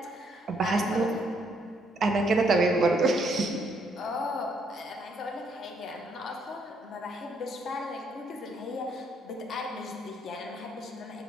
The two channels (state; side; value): normal; both; correlation 0.71